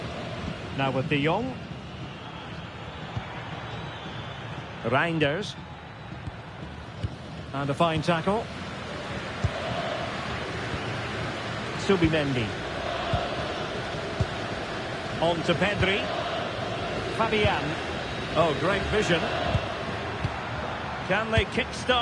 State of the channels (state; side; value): identical; both; correlation 1.00